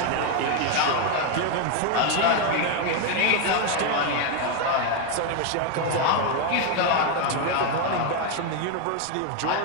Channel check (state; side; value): different; both; correlation 0.01